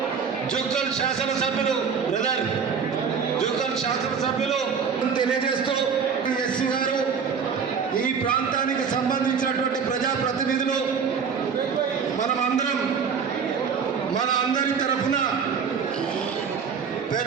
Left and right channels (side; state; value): left; quieter; 6.3 dB